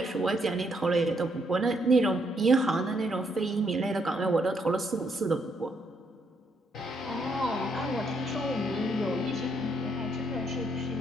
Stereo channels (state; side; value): normal; both; correlation 0.74